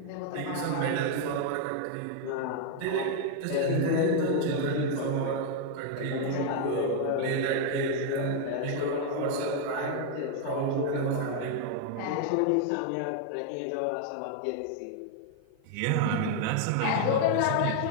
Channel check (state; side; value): different; both; correlation 0.00